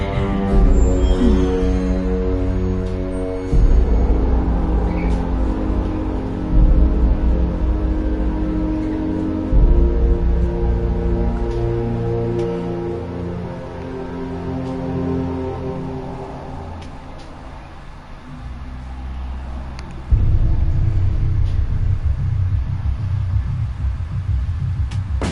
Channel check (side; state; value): both; identical; correlation 1.00